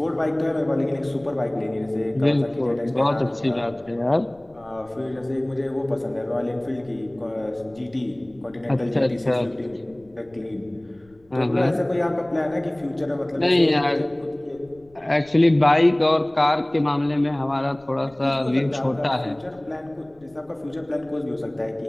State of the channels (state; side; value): noise; left; rumble, 29 dB below the sound